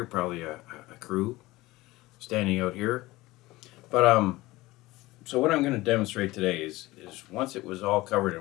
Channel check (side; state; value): right; quieter; 19.4 dB